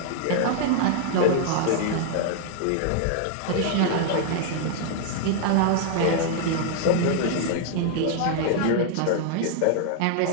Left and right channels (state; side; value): different; both; correlation 0.00